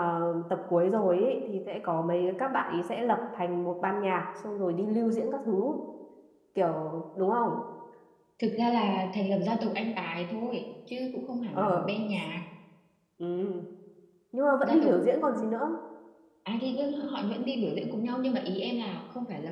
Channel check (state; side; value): identical; both; correlation 1.00